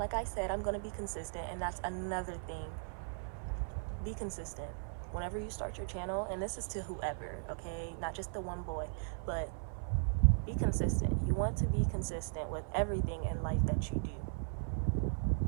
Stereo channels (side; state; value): left; silent; 53 dB below the other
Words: I said, I'm gonna be consistent, and that's another thing. Be consistent whenever you start your channel, and this is to whoever, okay? Not just the one boy, but be consistent. You want to be consistent with everything in life that you do.